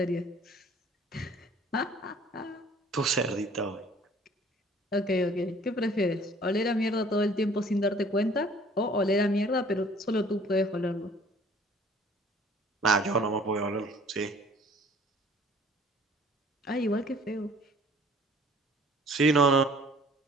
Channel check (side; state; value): both; normal; correlation 0.53